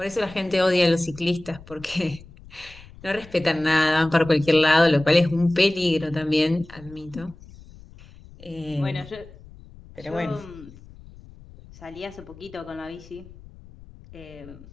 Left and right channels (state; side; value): noise; left; rumble, 20 dB below the sound